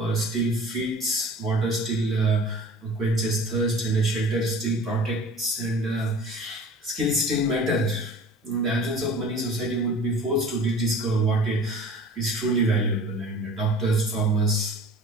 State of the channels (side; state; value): both; normal; correlation 0.43